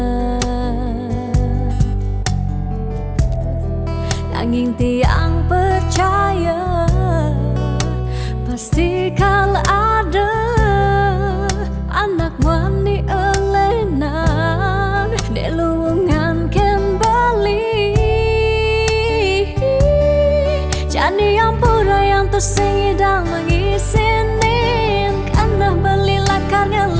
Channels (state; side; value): identical; both; correlation 1.00